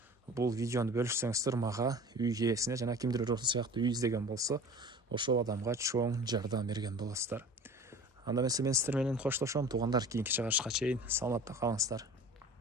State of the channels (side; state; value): both; normal; correlation 0.41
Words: бул видеону бөлүшсөңүздөр мага, үй ээсине жана кимдир ошол сыяктуу үй издеген болсо, ошол адамга чоң жардам берген болосуздар. Анда мен сиздер менен коштошом туугандар, кийинки чыгарышка чейин саламатта калыңыздар.